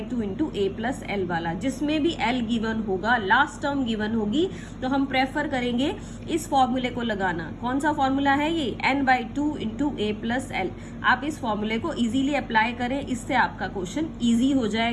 into a plus l वाला, जिसमें भी l गिवन होगा, लास्ट टर्म गिवन होगी, तो हम प्रेफर करेंगे इस फॉर्मूले को लगाना। कौन सा फॉर्मूला है ये, n/2 into a plus l। आप इस फॉर्मूले को इजीली अप्लाई करें, इससे आपका क्वेश्चन इजी हो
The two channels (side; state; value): both; identical; correlation 1.00